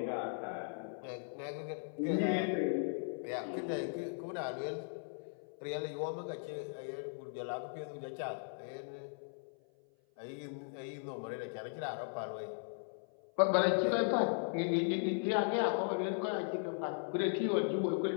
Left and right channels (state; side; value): silent; right; 53 dB below the other